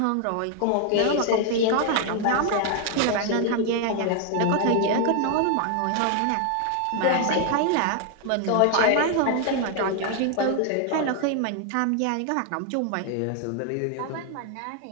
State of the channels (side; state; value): both; different; correlation 0.00